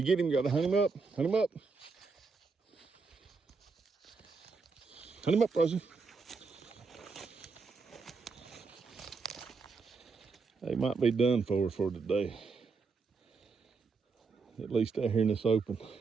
get him, you gotta hunt him up. Hunt him up. Hunt him up, Rosie. They might be done for today. At least out here in this open.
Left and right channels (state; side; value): quieter; left; 4.6 dB